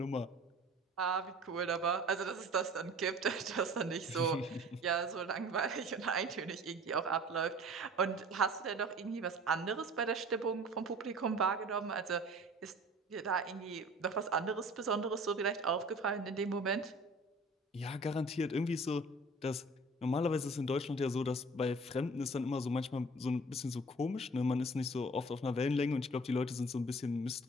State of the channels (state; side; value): normal; both; correlation 0.46